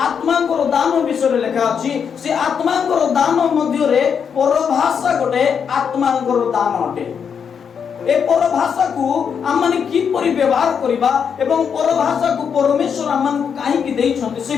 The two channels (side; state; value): right; quieter; 7.0 dB